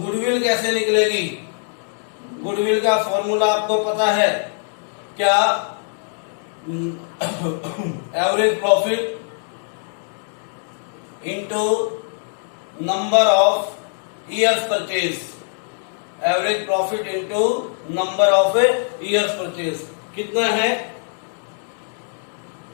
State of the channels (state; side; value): silent; right; digital silence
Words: कैसे निकलेगी, गुडविल का फॉर्मूला आपको पता है क्या, average profit into number of years purchase, average profit into number of years purchase कितना है,